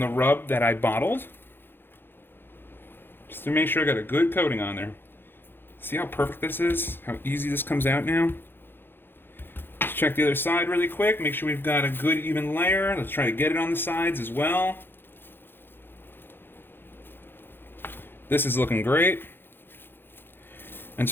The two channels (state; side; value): late; right; 0.10 ms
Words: rub that I bottled. just to make sure I got a good coating on there. See how perfect this is? How easy this comes out now? Let's check the other side really quick. Make sure we've got a good even layer. Let's try to get it on the sides as well. This is looking great. And